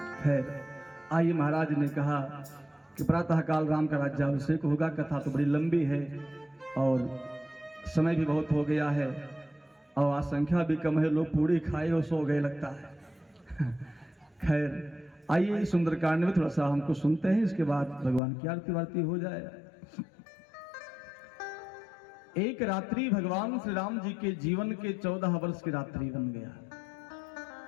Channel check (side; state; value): right; drops out; at 18.2 s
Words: है। आइए महाराज ने कहा कि प्रातः काल राम का राज्याभिषेक होगा। कथा तो बड़ी लंबी है और समय भी बहुत हो गया है और आज संख्या भी कम है, लोग पूरी खाए और सो गए लगता है। खैर आइए सुंदरकांड में थोड़ा सा हमको सुनते हैं, इसके बाद भगवान की आरती वारती हो जाए। एक रात्रि भगवान श्री राम जी के जीवन के 14 वर्ष की रात्रि बन गया।